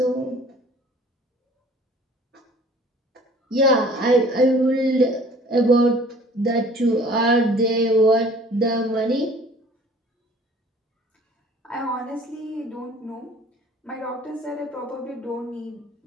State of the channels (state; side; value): normal; both; correlation 0.51